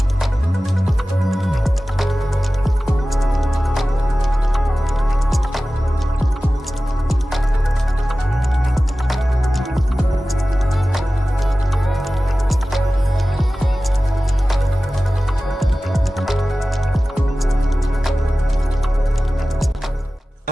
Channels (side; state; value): both; normal; correlation 0.96